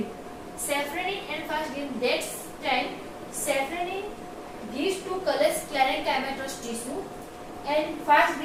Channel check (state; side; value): identical; both; correlation 1.00